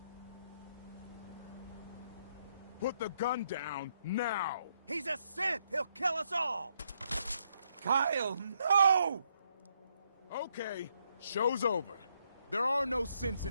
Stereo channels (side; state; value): both; inverted; correlation -0.76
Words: Put the gun down, now! He's a synth! He'll kill us all! Kyle, no! Okay, show's over. There are no synths